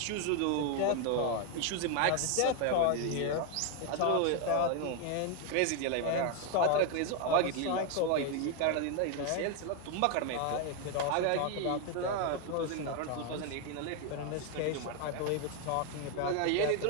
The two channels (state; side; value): different; both; correlation 0.01